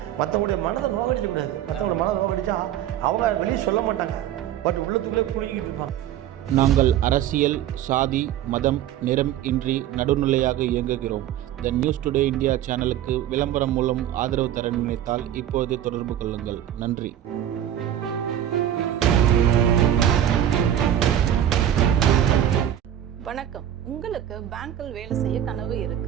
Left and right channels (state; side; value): quieter; left; 11.1 dB